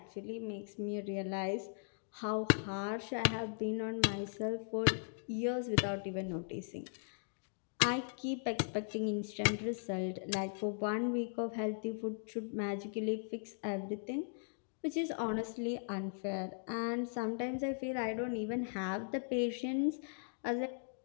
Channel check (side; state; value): right; silent; digital silence